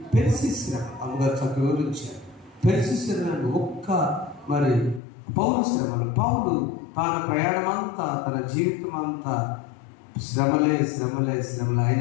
పెర్సిస్ శ్రమ. అమ్మగారు చక్కగా వివరించారు. పెర్సిస్ శ్రమ మరి పౌరు శ్రమలు. పౌలు తన ప్రయాణం అంతా, తన జీవితం అంతా శ్రమలే శ్రమలే శ్రమలు.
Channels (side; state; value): right; drops out; at 5.0 s